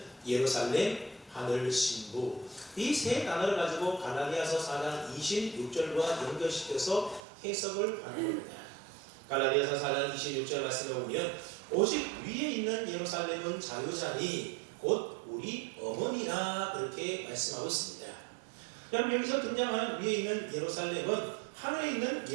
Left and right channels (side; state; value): left; drops out; at 7.2 s